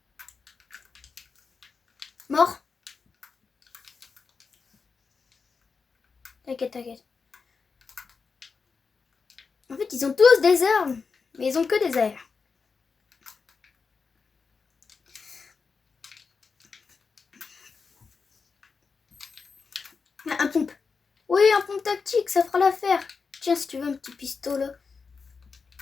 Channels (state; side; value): quieter; right; 5.0 dB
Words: Mort. T'inquiète, t'inquiète. En fait, ils ont tous des armes. Mais ils ont que des airs. Un pompe. Oui, un pompe tactique, ça fera l'affaire. Tiens, si tu veux un petit pistolet.